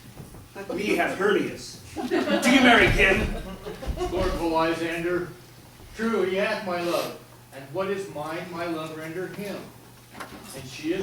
Let me have Hermia's. Do you marry him? Lordful Lysander, true, he hath my love, and what is mine, my love render him. And she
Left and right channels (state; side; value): identical; both; correlation 1.00